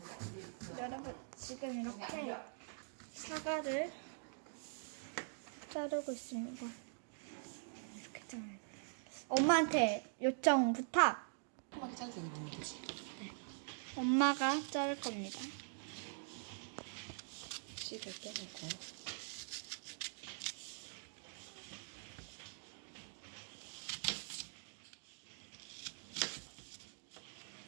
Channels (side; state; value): left; silent; digital silence